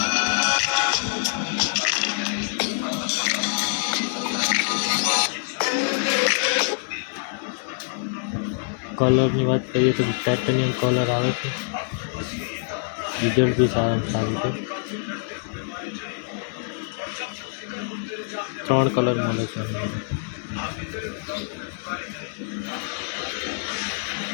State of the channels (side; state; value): right; silent; digital silence